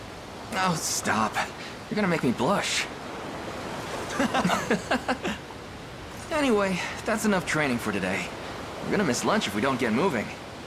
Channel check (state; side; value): identical; both; correlation 1.00